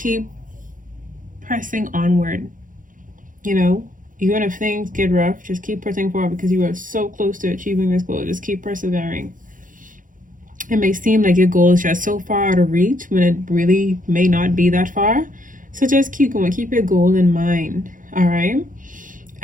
pressing onward. Even if things get rough, just keep pressing forward because you are so close to achieving this goal. Just keep persevering. It may seem like your goal is just so far out of reach when it really may not be that far. So just keep going. Keep your goal in mind. All right.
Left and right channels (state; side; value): late; left; 0.39 ms